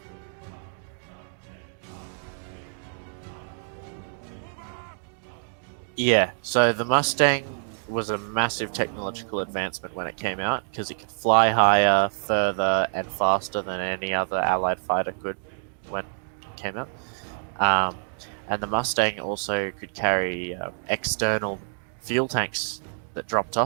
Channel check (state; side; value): silent; left; digital silence